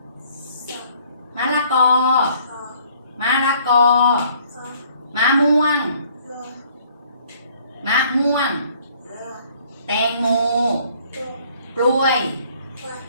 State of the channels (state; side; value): inverted; both; correlation -0.60